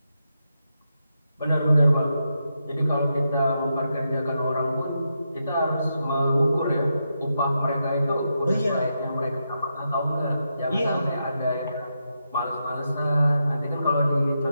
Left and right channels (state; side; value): inverted; both; correlation -0.85